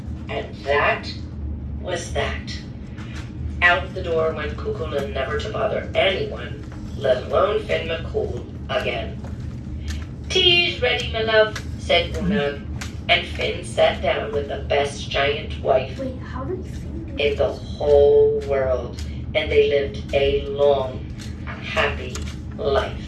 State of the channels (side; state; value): both; identical; correlation 1.00